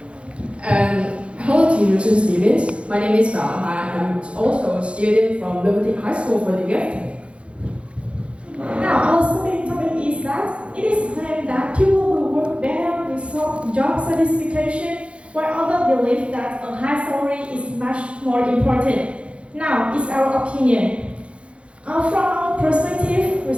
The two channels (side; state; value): left; late; 0.060 ms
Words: Hello teachers and students, my name is Bao. I'm also a student from Liberty High School for the Gifted. Now, our SBD topic is that it is claimed that people will work better with job satisfaction, while others believe that a high salary is much more important. Now, it's our opinion. From our perspective, we